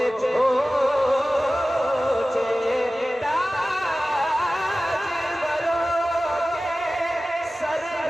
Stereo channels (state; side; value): normal; both; correlation 0.96